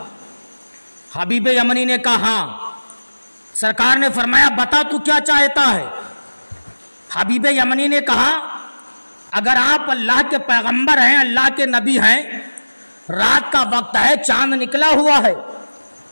حبیب یمنی نے کہا ہاں۔ سرکار نے فرمایا بتا تو کیا چاہتا ہے؟ حبیب یمنی نے کہا اگر آپ اللہ کے پیغمبر ہیں، اللہ کے نبی ہیں، رات کا وقت ہے، چاند نکلا ہوا ہے،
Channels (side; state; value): both; inverted; correlation -1.00